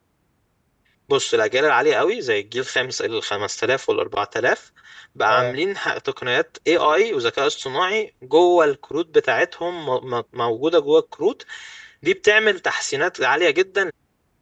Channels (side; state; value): both; identical; correlation 1.00